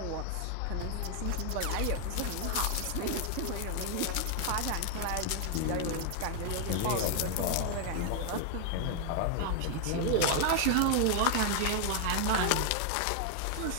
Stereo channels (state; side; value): different; both; correlation 0.00